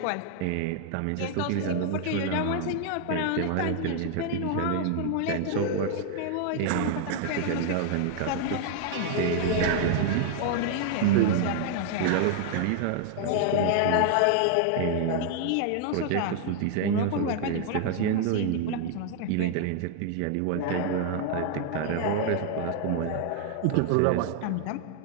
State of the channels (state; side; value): different; both; correlation 0.00